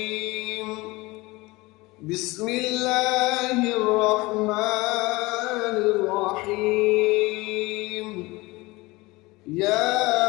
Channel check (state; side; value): quieter; right; 22.2 dB